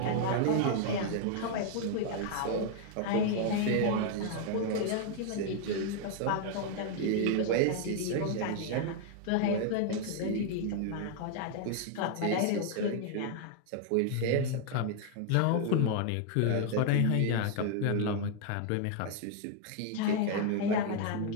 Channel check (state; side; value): different; both; correlation 0.00